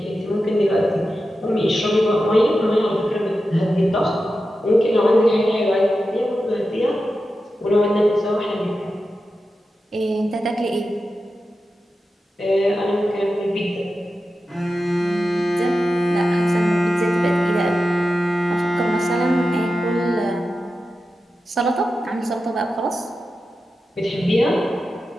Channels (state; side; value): normal; both; correlation 0.91